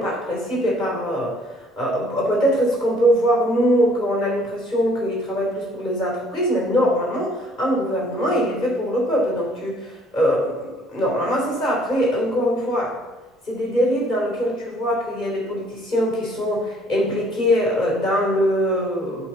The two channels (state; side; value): normal; both; correlation 0.60